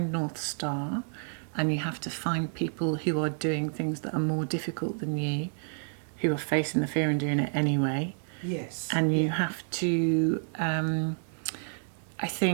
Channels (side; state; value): left; silent; 58 dB below the other